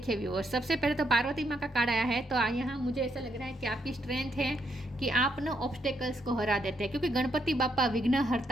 व्यूअर्स, सबसे पहले तो पार्वती माँ का कार्ड आया है, तो यहाँ मुझे ऐसा लग रहा है कि आपकी स्ट्रेंथ है कि आप ना ऑब्स्टेकल्स को हरा देते हैं, क्योंकि गणपति बापा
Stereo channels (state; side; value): normal; both; correlation 0.77